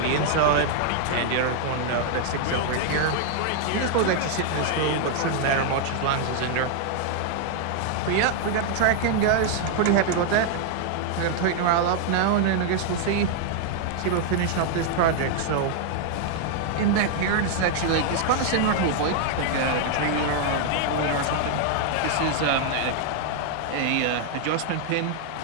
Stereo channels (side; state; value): both; different; correlation 0.00